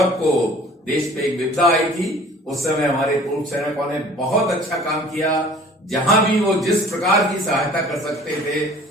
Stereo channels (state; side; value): normal; both; correlation 0.49